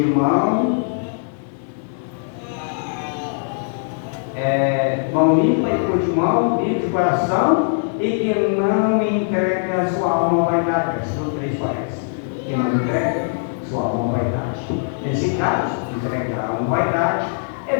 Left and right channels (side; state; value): right; silent; digital silence